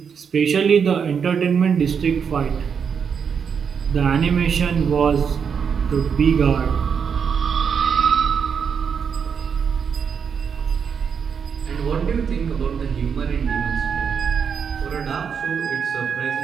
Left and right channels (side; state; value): left; quieter; 6.8 dB